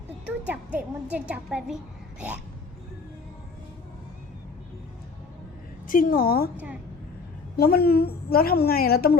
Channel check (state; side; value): quieter; right; 4.5 dB